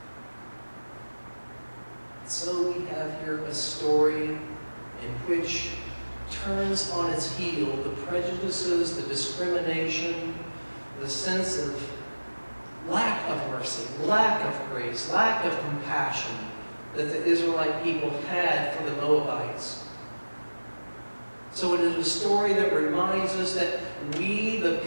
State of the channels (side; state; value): both; inverted; correlation -1.00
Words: So we have here a story in which turns on its heel the prejudices, the discrimination, the sense of lack of mercy, lack of grace, lack of compassion that the Israelite people had for the Moabites. So it is a story that reminds us that we, the